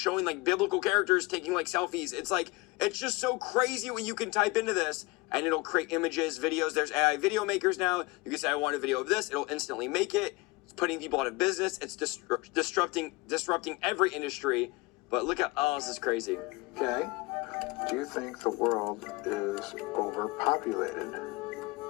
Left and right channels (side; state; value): right; quieter; 23.6 dB